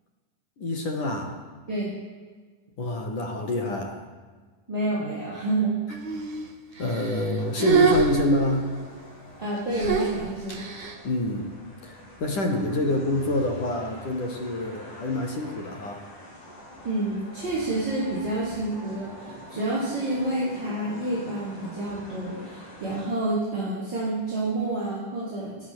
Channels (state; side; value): late; right; 10 ms